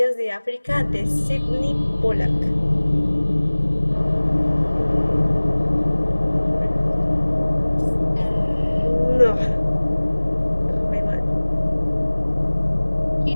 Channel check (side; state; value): both; inverted; correlation -1.00